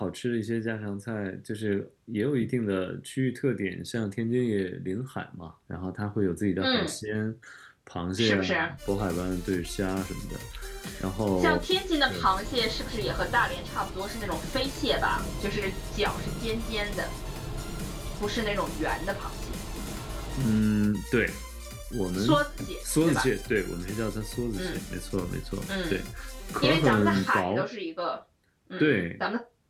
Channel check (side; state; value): both; identical; correlation 1.00